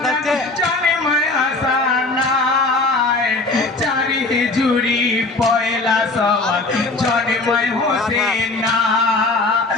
জানে মায়া সানায় চারি জুড়ি পয়লা সওয়াল জানে মায় হোসেন না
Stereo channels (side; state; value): right; quieter; 3.3 dB